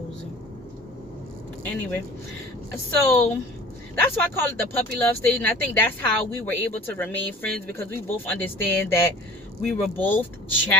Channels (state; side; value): normal; both; correlation 0.44